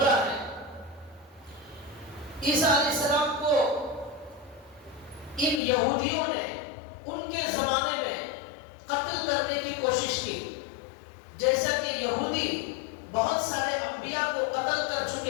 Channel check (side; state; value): right; drops out; at 5.6 s